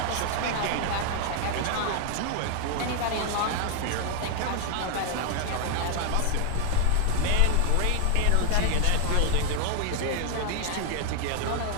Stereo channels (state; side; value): different; both; correlation 0.00